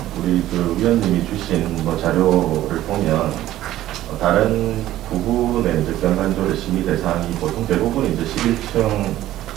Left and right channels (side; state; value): left; quieter; 14.1 dB